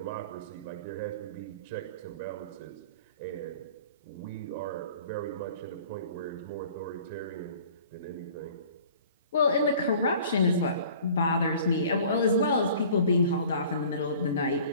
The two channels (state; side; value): inverted; both; correlation -0.48